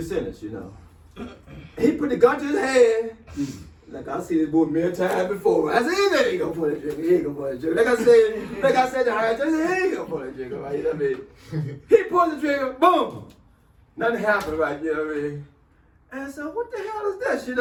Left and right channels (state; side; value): identical; both; correlation 1.00